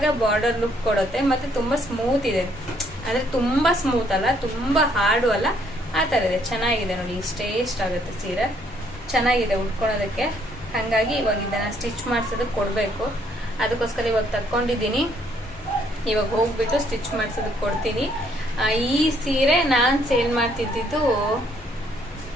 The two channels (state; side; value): normal; both; correlation 0.67